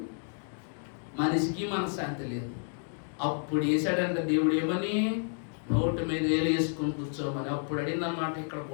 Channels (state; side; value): silent; right; 56 dB below the other